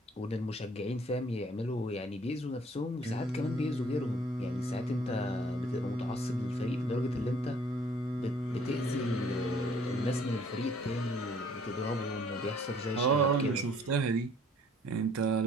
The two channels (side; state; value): both; normal; correlation 0.58